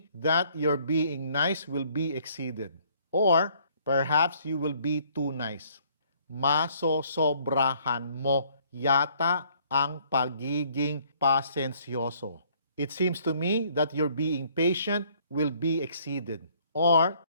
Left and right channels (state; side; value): inverted; both; correlation -0.62